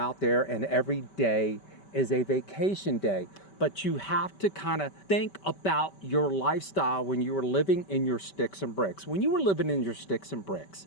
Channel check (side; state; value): right; late; 5.2 ms